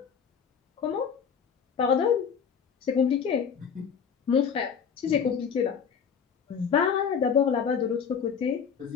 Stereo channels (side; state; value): right; quieter; 6.9 dB